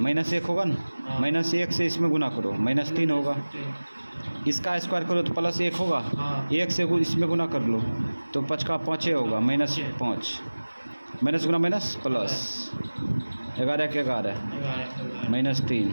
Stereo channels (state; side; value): inverted; both; correlation -1.00